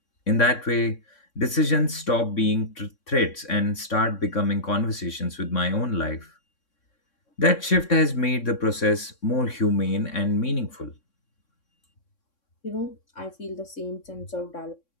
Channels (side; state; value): right; late; 3.6 ms